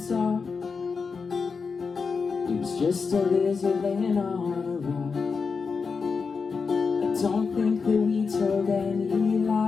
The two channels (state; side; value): quieter; right; 5.1 dB